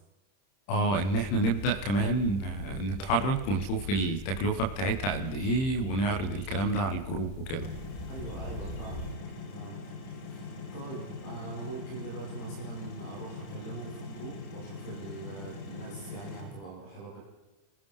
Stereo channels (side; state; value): right; late; 31 ms